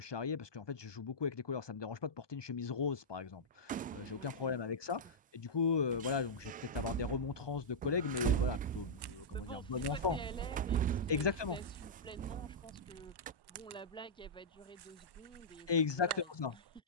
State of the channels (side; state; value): both; normal; correlation -0.11